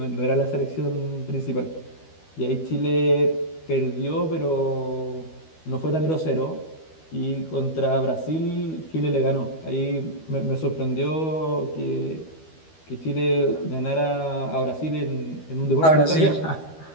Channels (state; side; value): late; right; 13 ms